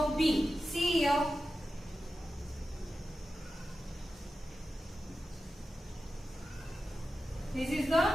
B. See here. This is the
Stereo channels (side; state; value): both; normal; correlation 0.92